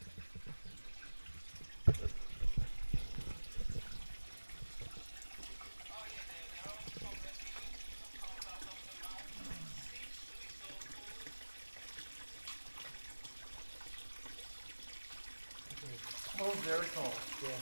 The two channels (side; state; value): both; inverted; correlation -1.00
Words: Oh, very cold. Yeah.